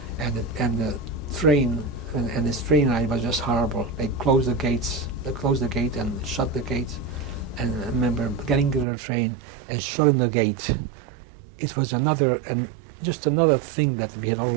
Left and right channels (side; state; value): left; drops out; at 8.8 s